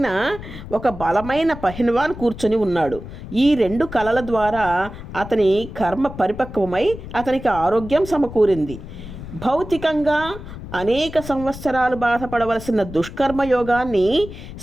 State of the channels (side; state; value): left; noise; rumble, 12 dB below the sound